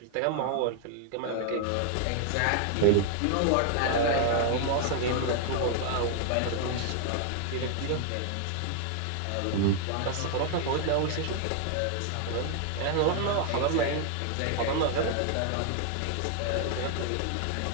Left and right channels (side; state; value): both; different; correlation 0.00